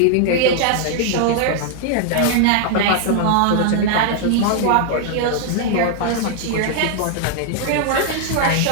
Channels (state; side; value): different; both; correlation 0.00